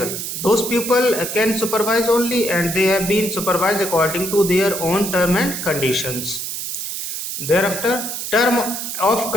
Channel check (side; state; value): right; noise; hiss, 5 dB below the sound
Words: Those people can supervise only, and they have been supervised according to their own term and conditions. Thereafter, term of